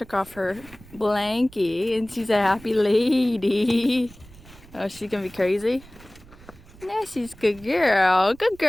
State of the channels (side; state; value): right; noise; rumble, 22 dB below the sound